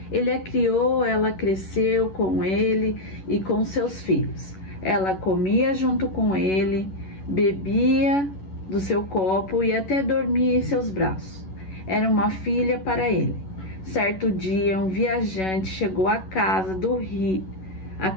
Ele a criou, ela cresceu com ele e com seus filhos. Ela comia junto com ele, bebia do seu copo e até dormia em seus braços. Era uma filha para ele. Certo dia, um viajante chegou à casa do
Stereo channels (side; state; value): right; late; 11 ms